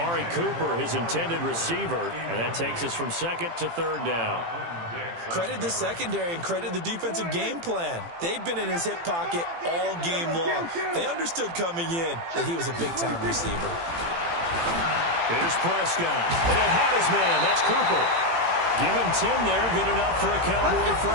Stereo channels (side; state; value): left; late; 18 ms